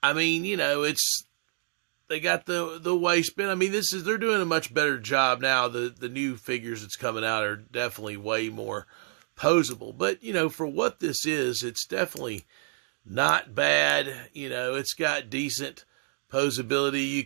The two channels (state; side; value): silent; left; digital silence